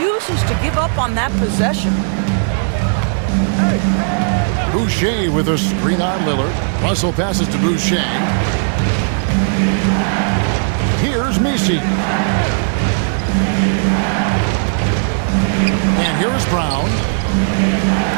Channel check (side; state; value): left; silent; 69 dB below the other